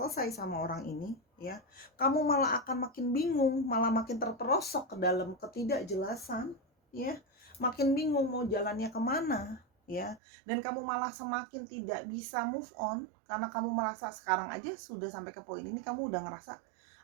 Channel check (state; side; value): drops out; left; at 10.2 s